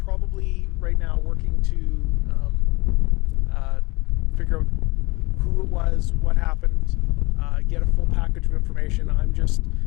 right now working to figure out who it was, what happened, get a full package of information. I'm just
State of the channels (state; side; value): quieter; right; 24.3 dB